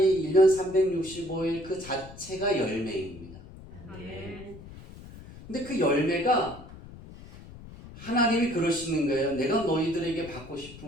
1년 365일 그 자체가 열매입니다. 근데 그 열매가 하나님이 그러시는 거예요. 내가 너희들에게 받고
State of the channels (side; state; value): left; noise; rumble, 17 dB below the sound